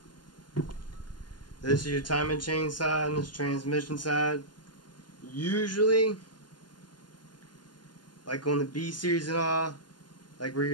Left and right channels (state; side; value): late; right; 0.71 ms